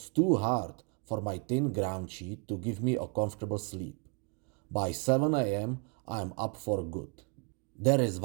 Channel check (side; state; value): left; quieter; 36.2 dB